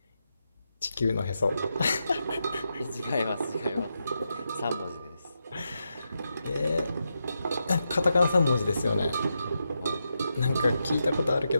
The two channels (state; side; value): inverted; both; correlation -0.86